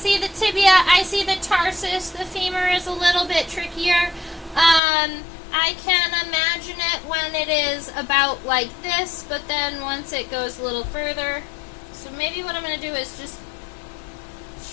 the tibia, I see the tarsus, the femur is a little bit trickier. I can imagine it when it is about like this, but then once it goes a little further. So maybe what I'm going to do is just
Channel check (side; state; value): right; drops out; at 4.8 s